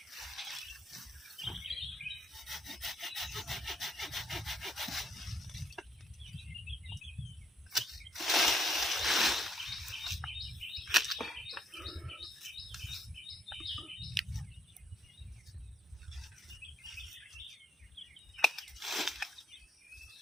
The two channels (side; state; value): both; normal; correlation 0.72